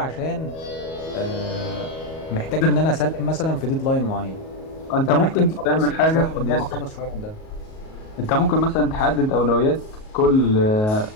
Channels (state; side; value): late; right; 38 ms